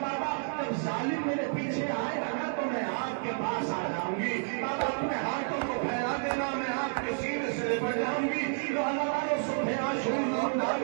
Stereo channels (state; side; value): silent; left; digital silence